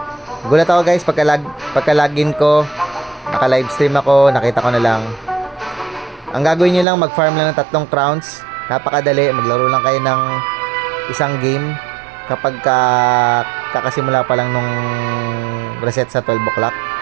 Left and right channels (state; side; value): drops out; left; at 6.9 s